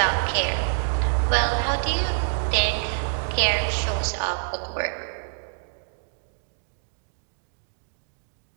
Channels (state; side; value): silent; left; digital silence